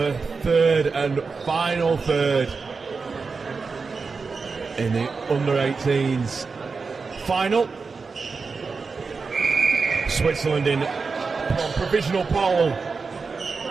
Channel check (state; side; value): quieter; left; 4.7 dB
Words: third and final third in the under-18s final. Switzerland in provisional pole